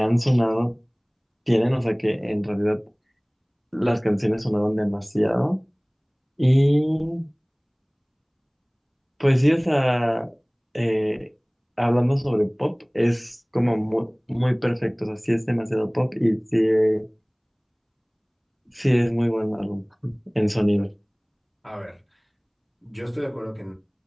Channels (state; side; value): identical; both; correlation 1.00